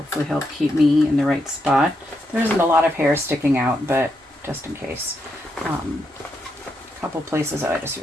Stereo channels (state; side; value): normal; both; correlation 0.81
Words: help keep me in the right spot. There isn't a lot of hair sticking out, but just in case. A couple places that I just